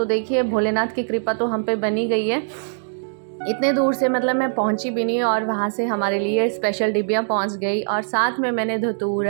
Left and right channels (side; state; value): left; silent; digital silence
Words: देखिए, भोलेनाथ की कृपा तो हम पे बनी गई है। इतने दूर से मतलब मैं पहुंची भी नहीं और वहाँ से हमारे लिए स्पेशल डिब्बियाँ पहुंच गई। और साथ में मैंने